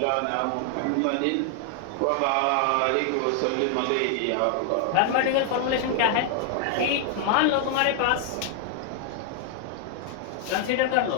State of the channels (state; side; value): different; both; correlation 0.00